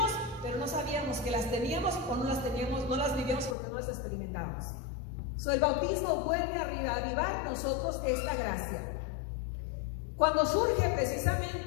pero no sabíamos que las teníamos o no las teníamos, no las vivíamos porque no las experimentábamos. El bautismo vuelve a reavivar nosotros esta gracia. Cuando surge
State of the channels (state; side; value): drops out; right; at 3.6 s